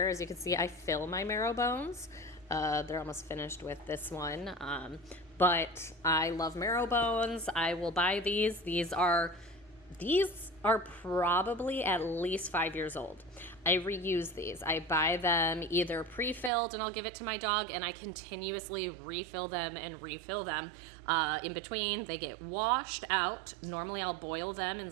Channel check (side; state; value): left; drops out; at 16.5 s